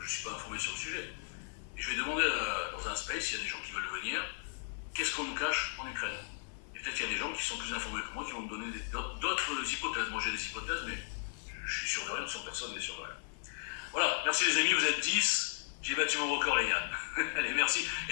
que je ne suis pas informé sur le sujet. Et je vais demander dans un space, s'il y a des gens qui veulent venir, qu'est-ce qu'on nous cache en Ukraine? Peut-être qu'il y a des gens qui sont plus informés que moi qui vont me donner d'autres hypothèses. Moi j'ai des hypothèses, mais je suis sûr de rien, personne n'est sûr de rien. Voilà, merci les amis, vous êtes 10. J'ai battu mon record, les gars. Allez, merci.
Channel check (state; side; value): silent; right; 54 dB below the other